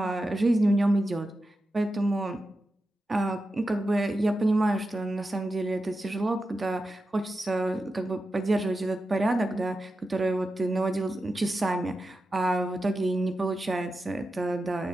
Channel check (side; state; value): both; normal; correlation 0.91